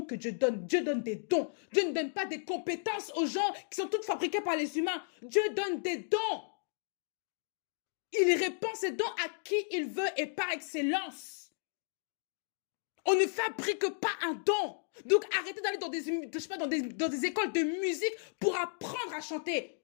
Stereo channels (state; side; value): silent; right; digital silence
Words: que Dieu donne. Dieu donne des dons. Dieu ne donne pas des compétences aux gens qui sont toutes fabriquées par les humains. Dieu donne des dons. Il répand ses dons à qui il veut et par excellence. On ne fabrique pas un don. Donc arrêtez d'aller dans dans des écoles de musique pour apprendre à chanter.